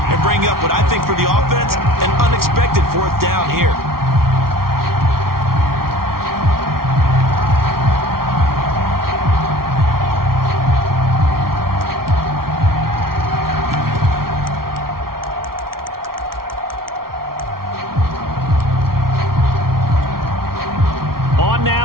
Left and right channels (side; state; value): left; late; 0.93 ms